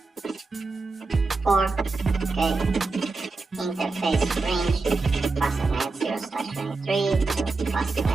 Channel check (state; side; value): quieter; left; 3.8 dB